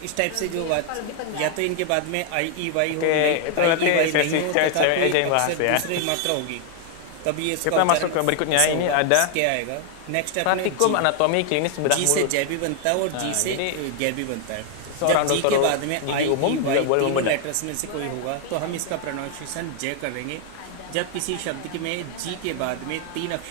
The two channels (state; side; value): different; both; correlation 0.00